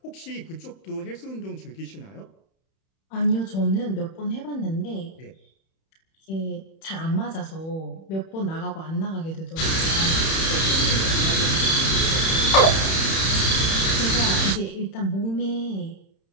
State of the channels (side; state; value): right; late; 31 ms